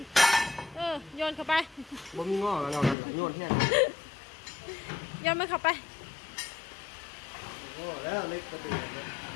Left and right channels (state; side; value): drops out; right; at 3.0 s